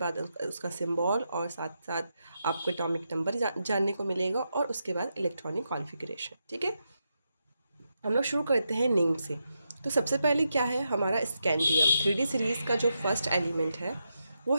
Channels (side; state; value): both; inverted; correlation -0.85